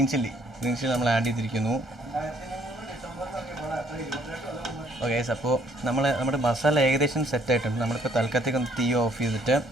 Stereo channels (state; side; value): normal; both; correlation 0.64